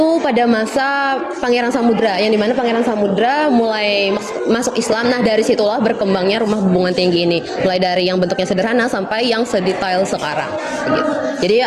pada masa Pangeran Samudra, yang dimana Pangeran Samudra mulai masuk Islam. Nah, dari situlah berkembangnya rumah Bubungan Tinggi ini, mulai dari yang bentuknya sederhana sampai yang sedetail sekarang begitu. Jadi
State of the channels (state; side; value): identical; both; correlation 1.00